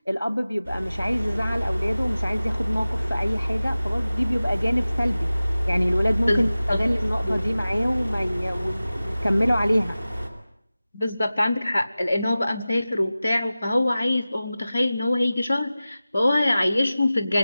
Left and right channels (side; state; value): both; inverted; correlation -0.96